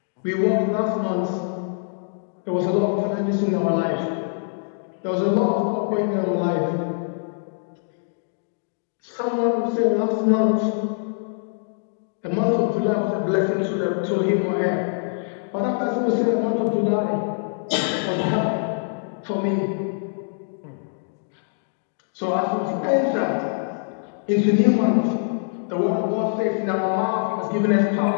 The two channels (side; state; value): right; silent; digital silence